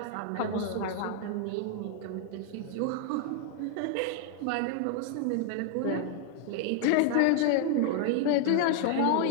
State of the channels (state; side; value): different; both; correlation 0.00